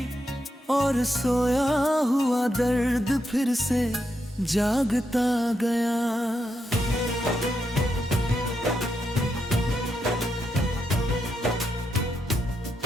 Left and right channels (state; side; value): normal; both; correlation 0.83